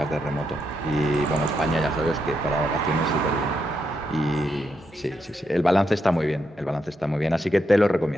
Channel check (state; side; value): normal; both; correlation 0.82